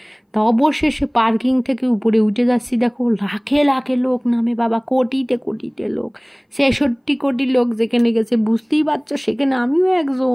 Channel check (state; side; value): identical; both; correlation 1.00